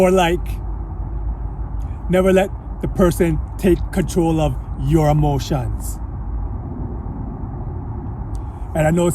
like, never let the person take control of your emotions. And I know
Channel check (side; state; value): both; identical; correlation 1.00